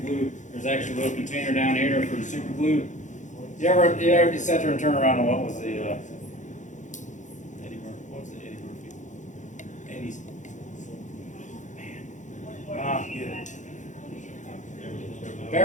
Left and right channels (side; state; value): right; late; 0.36 ms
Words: glue. There's actually a little container down here for the super glue. You ever sat there and turn around and what was the, Eddie Murphy, what was the Eddie Murphy? Eddie's.